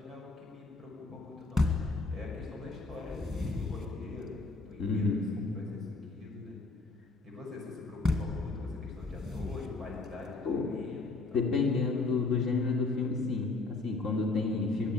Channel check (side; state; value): right; quieter; 3.5 dB